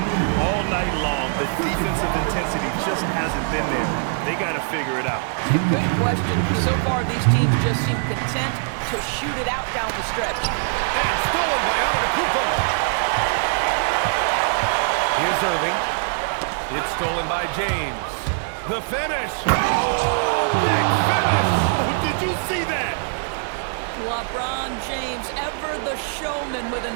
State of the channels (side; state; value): left; silent; digital silence